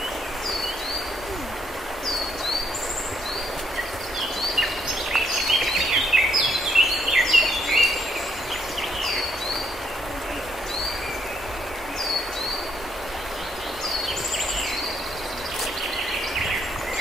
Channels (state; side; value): normal; both; correlation 0.73